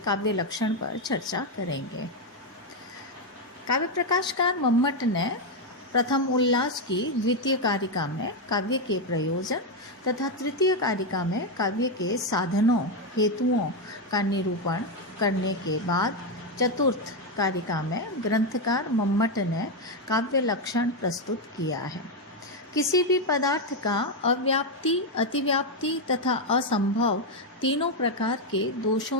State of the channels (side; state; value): both; normal; correlation 0.05